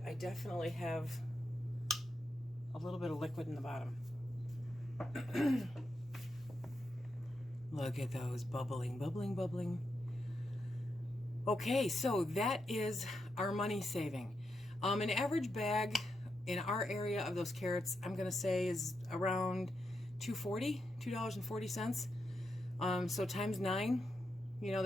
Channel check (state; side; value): normal; both; correlation 0.85